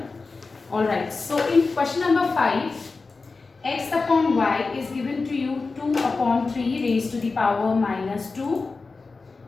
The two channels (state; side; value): quieter; right; 4.1 dB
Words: Alright, so in question number 5, x upon y is given to you 2 upon 3 raised to the power minus 2,